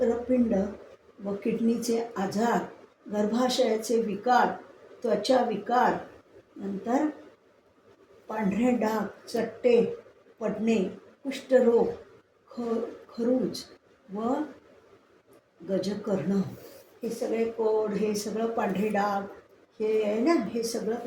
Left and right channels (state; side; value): identical; both; correlation 1.00